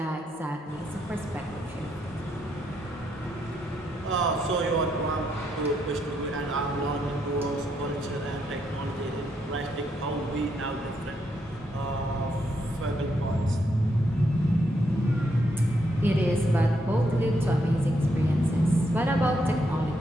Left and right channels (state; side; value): normal; both; correlation 0.77